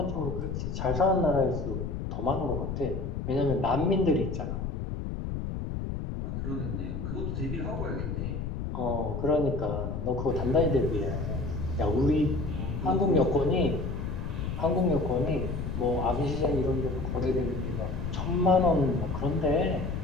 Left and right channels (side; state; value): left; noise; rumble, 4 dB below the sound